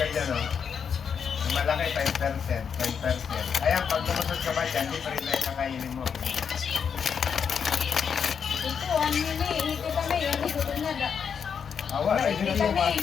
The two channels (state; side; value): quieter; right; 6.9 dB